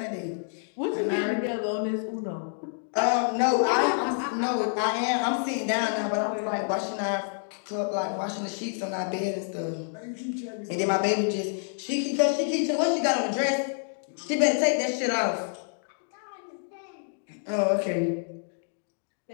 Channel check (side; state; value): right; silent; digital silence